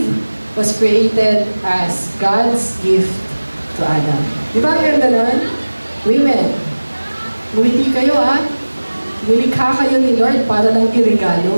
was created as God's gift to Adam. Di ba ang ganda nun? Women, ngumiti kayo Nilikha kayo ni Lord para lang iregalo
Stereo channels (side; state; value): both; inverted; correlation -1.00